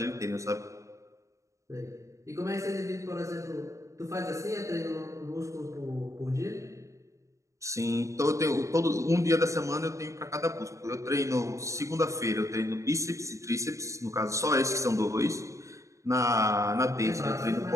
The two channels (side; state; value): left; late; 0.15 ms